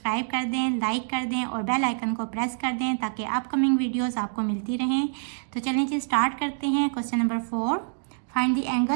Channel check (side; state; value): left; silent; digital silence